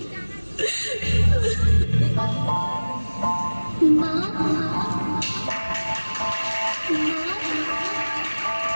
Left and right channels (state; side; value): inverted; both; correlation -1.00